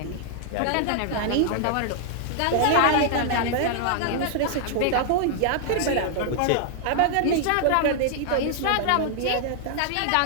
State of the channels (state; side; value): different; both; correlation 0.00